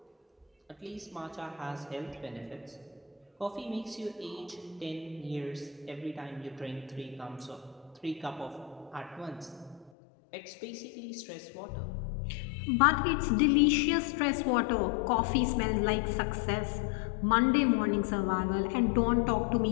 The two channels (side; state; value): right; drops out; at 9.9 s